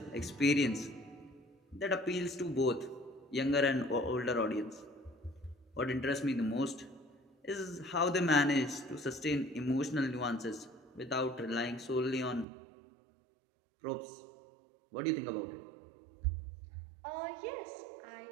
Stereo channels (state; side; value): drops out; left; at 12.5 s